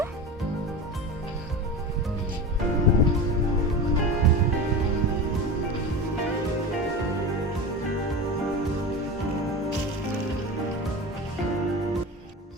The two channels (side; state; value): both; normal; correlation 0.27